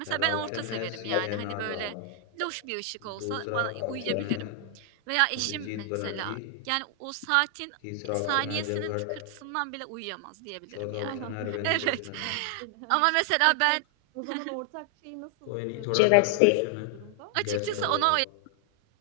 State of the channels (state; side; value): different; both; correlation 0.00